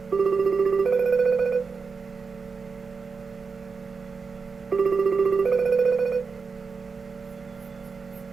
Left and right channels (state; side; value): quieter; left; 5.0 dB